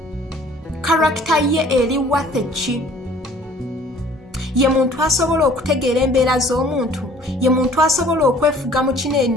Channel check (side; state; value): both; normal; correlation 0.52